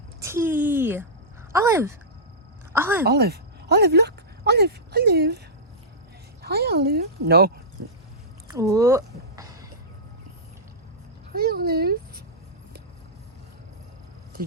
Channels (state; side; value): normal; both; correlation -0.13